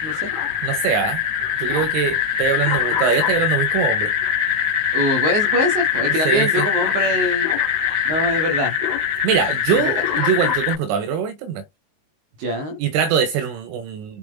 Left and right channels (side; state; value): left; late; 20 ms